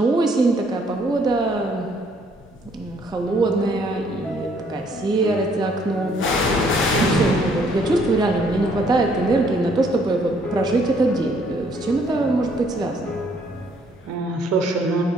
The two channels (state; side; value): normal; both; correlation 0.65